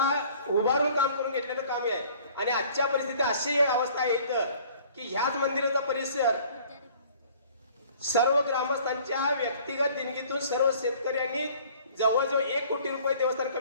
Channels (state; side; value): inverted; both; correlation -0.52